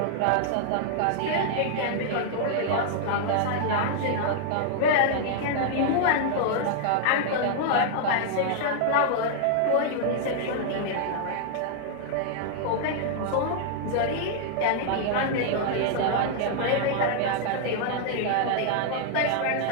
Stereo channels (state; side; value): different; both; correlation -0.01